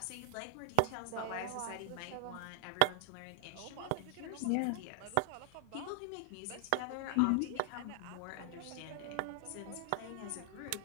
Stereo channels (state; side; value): different; both; correlation 0.00